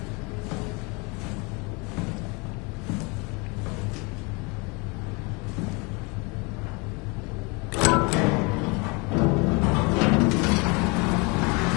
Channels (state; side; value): quieter; right; 29.1 dB